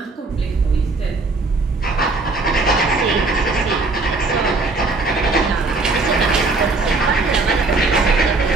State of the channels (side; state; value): left; quieter; 3.6 dB